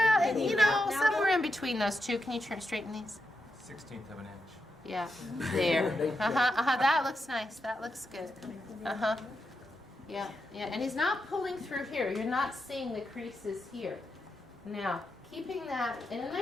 you know, somewhere in between those two. Can you straighten these? 1/16 of an inch. Yeah, there. That looks nice. That looks good. Yeah, and he's not pulling through here. You're not seeing the creases here. Now, keeping that, and a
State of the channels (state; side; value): normal; both; correlation 0.85